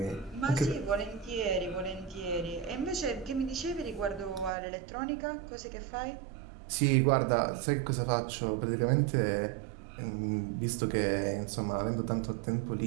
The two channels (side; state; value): left; drops out; at 4.5 s